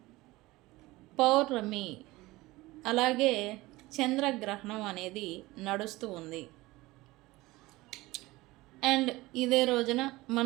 పౌర్ణమి, అలాగే చంద్రగ్రహణం అనేది నడుస్తూ ఉంది. అండ్ ఇదే రోజున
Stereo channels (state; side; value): quieter; left; 19.8 dB